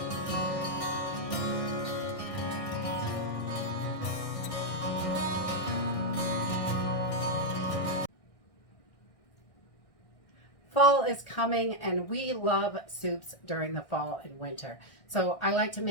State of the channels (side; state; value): right; late; 1.6 ms